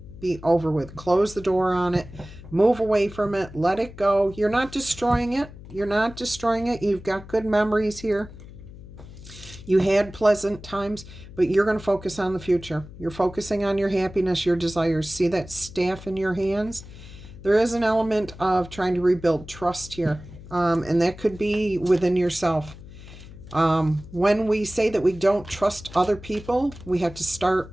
be over with. Close the door on it, move away from it, let it go. You're not destroying it. You're not destroying it. You've got good memories here. You had pleasant times, but you're going to focus on the future. You're focusing on your happiness, your desires. See that staff in your hands? There is an element of trying to rebuild trust here, and that could be within yourself. When we say that we don't trust other people, we have to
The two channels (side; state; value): left; noise; hum, 16 dB below the sound